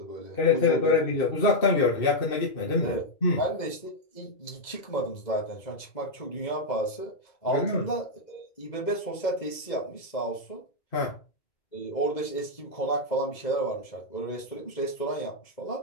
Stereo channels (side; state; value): right; late; 2.0 ms